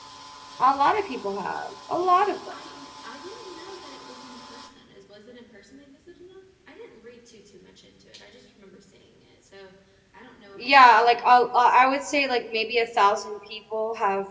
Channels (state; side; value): identical; both; correlation 1.00